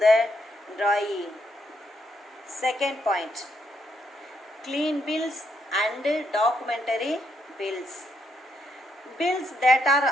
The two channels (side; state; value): both; normal; correlation 0.77